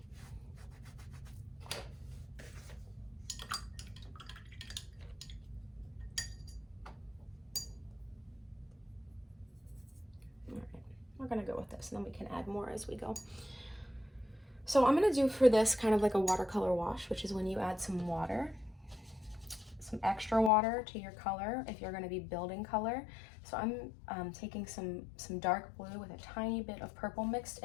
All right, we're gonna go with this, and then we can add more as we go. So I'm gonna do for this kind of like a watercolor wash, which is when you add some water, some extra water to your color if you're gonna be building color. So I'm taking some dark blue with a tiny bit of purple mixed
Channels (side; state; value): right; drops out; at 20.5 s